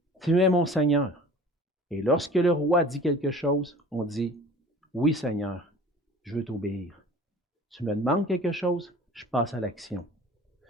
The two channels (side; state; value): both; normal; correlation 0.44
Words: Tu es mon Seigneur ». Et lorsque le roi dit quelque chose, on dit « Oui, Seigneur, je veux t'obéir. Tu me demandes quelque chose, je passe à l'action.